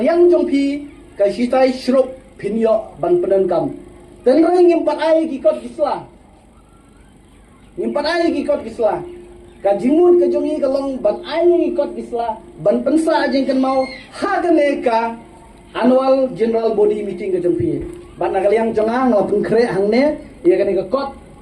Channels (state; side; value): identical; both; correlation 1.00